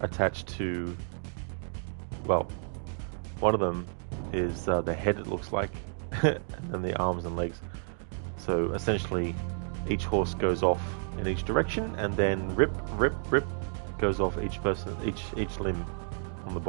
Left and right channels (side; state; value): left; silent; 57 dB below the other